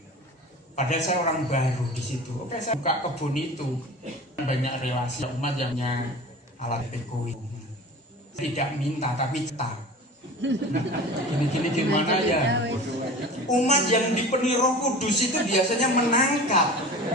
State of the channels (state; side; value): normal; both; correlation 0.37